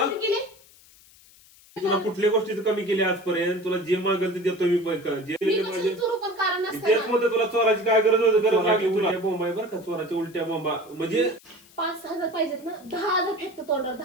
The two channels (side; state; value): left; noise; hiss, 26 dB below the sound